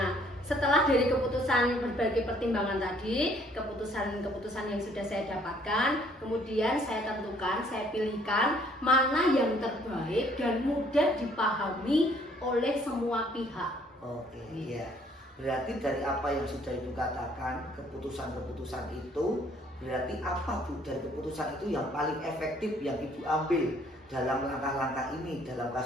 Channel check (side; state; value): both; normal; correlation 0.62